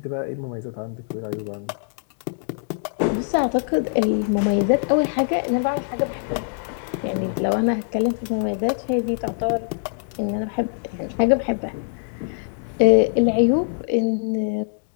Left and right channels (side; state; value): right; silent; digital silence